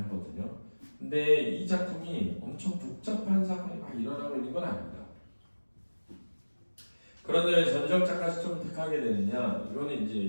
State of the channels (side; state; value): both; inverted; correlation -1.00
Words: 하거든요. 근데 이 작품이 엄청 복잡한 사건이 막 일어나고 있는 건 아닙니다. 그런데 왜 전지적 작가 시점을 택하게 되느냐? 이거는 이제